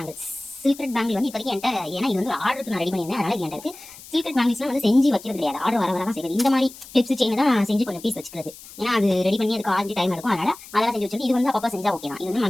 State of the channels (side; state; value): left; noise; hiss, 18 dB below the sound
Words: Silk thread bangle வந்து இப்போதைக்கு என்கிட்ட, ஏன்னா இது வந்து ஆர்டருக்கு நான் ரெடி பண்ணியிருந்தேன், அதனால் என்கிட்ட இருக்குது. சில்க் த்ரெட் பேங்கிள்ஸ்லாம் வந்து செஞ்சு வைக்கிறது கிடையாது, ஆர்டர் வர தான் செய்யுது. இந்த மாதிரி கிளிப்ஸ் செயின் தான் செஞ்சு கொஞ்சம் பீஸ் வச்சுக்கிறது. ஏன்னா அது ரெடி பண்ணி அதுக்கு 5 டைம் எடுக்கும், அதெல்லாம் செஞ்சு வச்சுட்டு இது வந்து அப்பப்போ செஞ்சால் ஓகே தான். இது வந்து